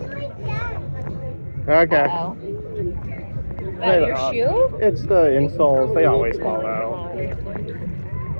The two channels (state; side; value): inverted; both; correlation -1.00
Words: Okay. Uh-oh. That your shoe? It's the insoles. They always fall out.